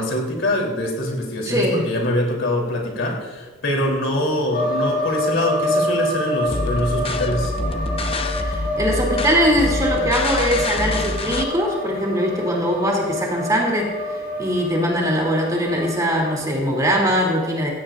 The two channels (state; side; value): normal; both; correlation 0.43